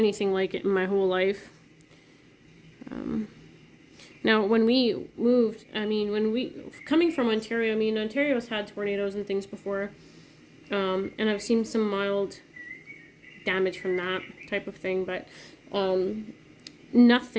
like it in my whole life. Now, when we moved, I mean, coming from Ontario, I mean, Ontario's had tornadoes and things before, and I've seen some mild damage from that type of thing, but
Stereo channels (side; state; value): both; identical; correlation 1.00